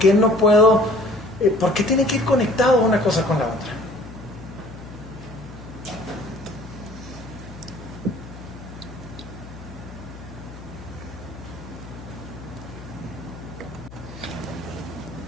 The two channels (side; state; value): left; noise; hum, 15 dB below the sound